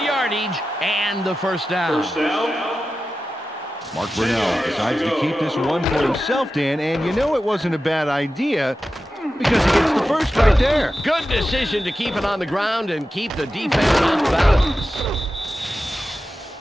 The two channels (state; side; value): normal; both; correlation 0.93